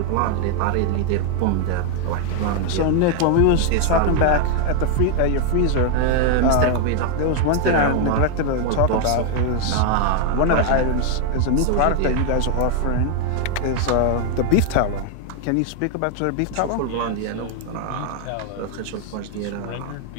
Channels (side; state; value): both; different; correlation 0.00